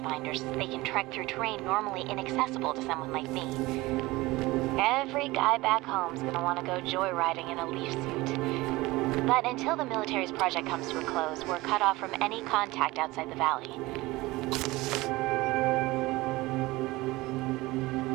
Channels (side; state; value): left; quieter; 20.4 dB